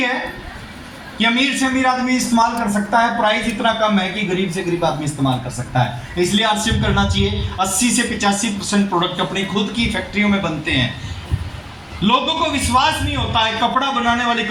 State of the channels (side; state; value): both; identical; correlation 1.00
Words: कि अमीर से अमीर आदमी इस्तेमाल कर सकता है, प्राइस इतना कम है कि गरीब से गरीब आदमी इस्तेमाल कर सकता है। इसलिए आरसीएम करना चाहिए। 80 से 85% प्रोडक्ट अपनी खुद की फैक्ट्रियों में बनते हैं। लोगों को विश्वास नहीं होता है कपड़ा बनाने वाली